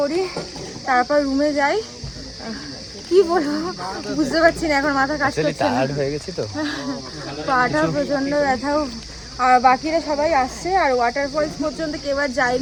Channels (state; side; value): identical; both; correlation 1.00